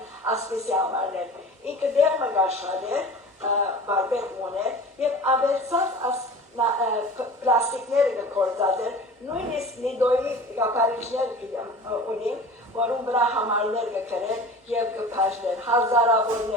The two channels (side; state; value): both; normal; correlation 0.38